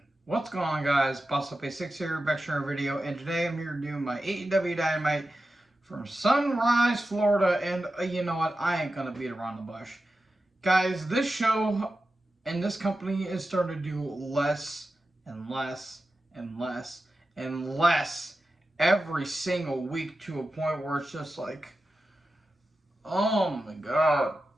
What's going on, guys? Boss Up A6 here, back to another video, and today I'm here to do my AEW Dynamite from Sunrise, Florida, and you know what? I ain't gonna beat around the bush. Guys, this show and this company is starting to do less and less and less and less every single week to a point where it's just like, oh my god.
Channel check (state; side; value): normal; both; correlation 0.92